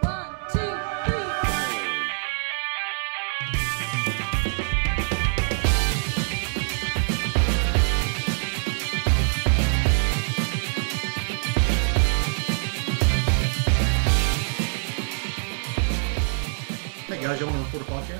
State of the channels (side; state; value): left; silent; 62 dB below the other